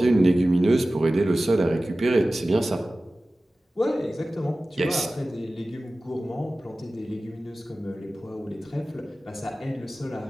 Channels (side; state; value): both; normal; correlation 0.96